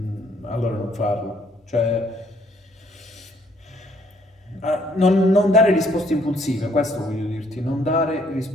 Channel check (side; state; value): both; normal; correlation 0.66